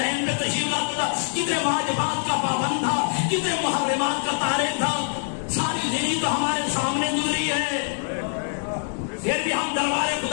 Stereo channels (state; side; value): silent; right; digital silence